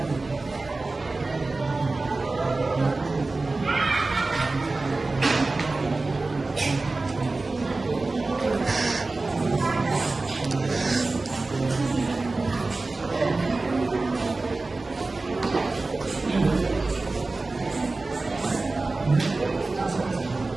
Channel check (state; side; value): quieter; left; 3.4 dB